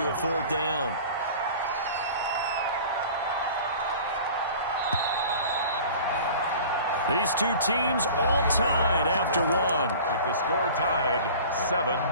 a fourth down. These two teams all tied after one. With the score tied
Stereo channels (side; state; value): both; inverted; correlation -0.42